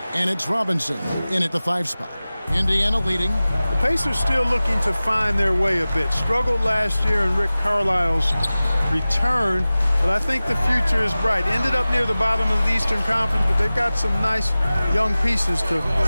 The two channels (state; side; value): inverted; both; correlation -0.97